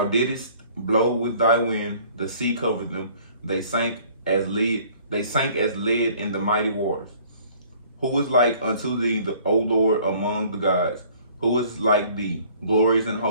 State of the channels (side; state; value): both; inverted; correlation -0.55